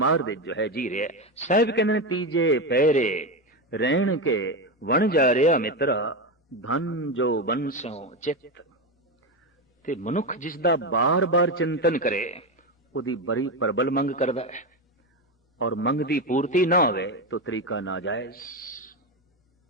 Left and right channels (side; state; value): both; normal; correlation 0.14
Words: दे जो है जी रहा। साहिब कहने तीजे पैरे रहन के वन जा रहा मित्रा, धन जो बंसों चित। ते मनुख जिसदा बार बार चिंतन करे उदी बड़ी प्रबल मंग करदा है, और मंग दी पूर्ति ना होवे तो तरीका नाजायज।